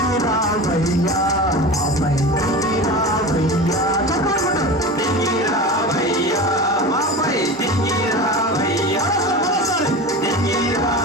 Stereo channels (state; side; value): normal; both; correlation 0.30